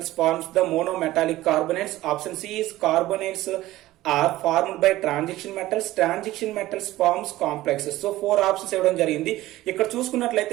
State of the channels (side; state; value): left; quieter; 16.4 dB